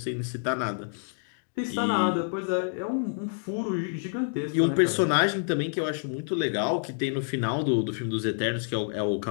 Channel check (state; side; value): silent; right; digital silence